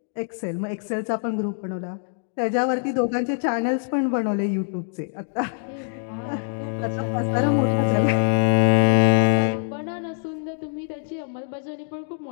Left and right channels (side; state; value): right; silent; digital silence